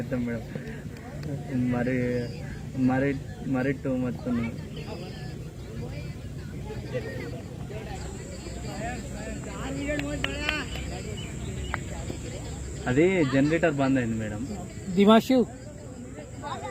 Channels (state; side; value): identical; both; correlation 1.00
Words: మేడం మరి మరి మరి టూ మచ్ ఉంది అది జనరేటర్ బంద్ అయింది మేడం दिमाशु